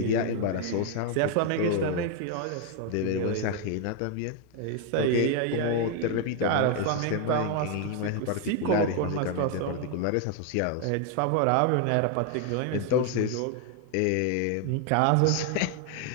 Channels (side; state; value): both; different; correlation 0.00